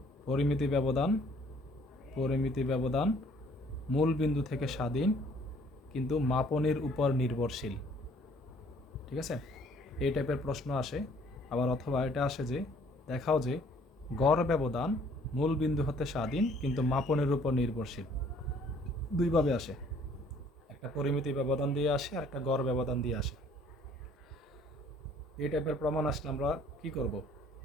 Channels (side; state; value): both; normal; correlation 0.59